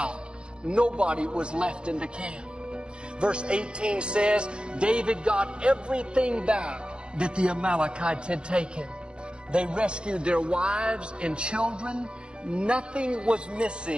Nobody was left in the camp. Verse 18 says, David got everything back that the Amalekites had taken. They rescued their wives and children. Nothing was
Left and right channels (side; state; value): left; late; 0.053 ms